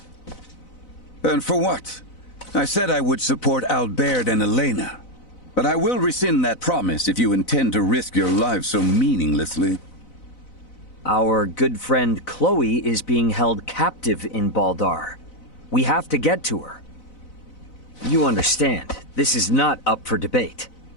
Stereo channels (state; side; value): late; right; 4.0 ms